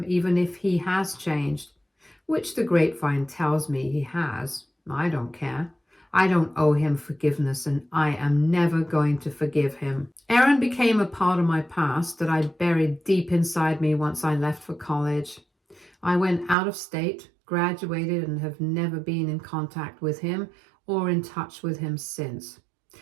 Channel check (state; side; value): drops out; left; at 16.6 s